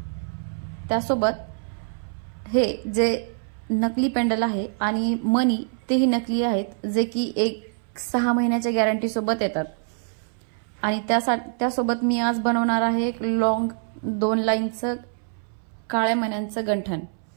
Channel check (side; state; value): left; silent; 62 dB below the other